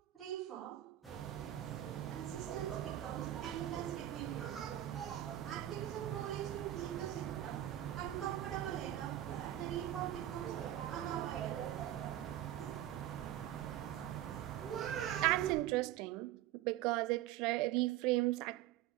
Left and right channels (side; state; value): left; quieter; 13.0 dB